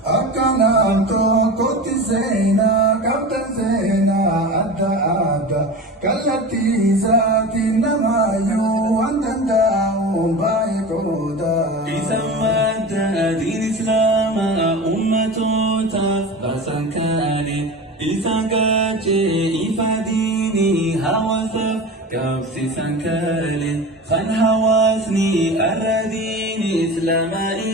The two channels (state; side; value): normal; both; correlation 0.30